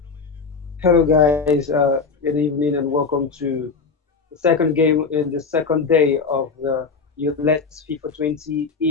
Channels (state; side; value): quieter; right; 4.8 dB